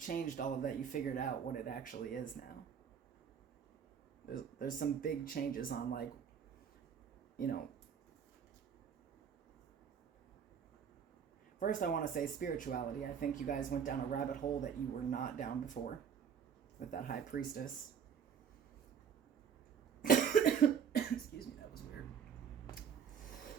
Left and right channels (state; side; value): quieter; left; 7.6 dB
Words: all of that. You figured out what it actually is now. There's some big changes on first I want to say spirituality. I think you guys went down a rabbit hole that you were not down before with that high priestess. Excuse me, that was weird.